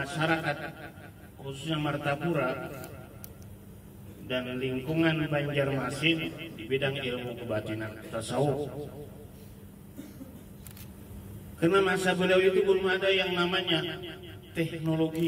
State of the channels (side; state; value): both; identical; correlation 1.00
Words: khususnya Martapura dan lingkungan Banjarmasin di bidang ilmu kebatinan tasawuf. Karena masa beliau itu belum ada yang namanya